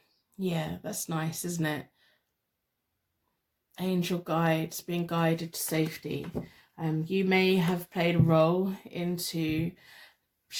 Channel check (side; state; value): both; identical; correlation 1.00